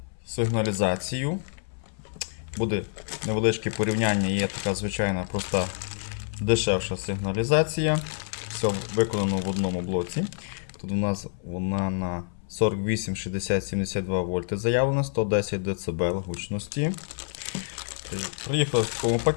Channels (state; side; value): silent; right; 60 dB below the other